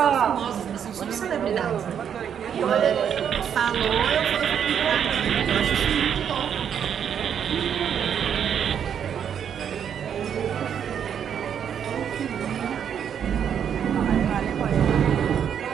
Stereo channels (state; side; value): quieter; left; 8.4 dB